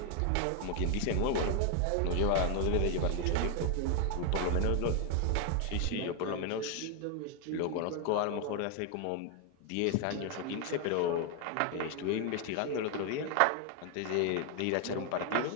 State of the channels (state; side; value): different; both; correlation 0.01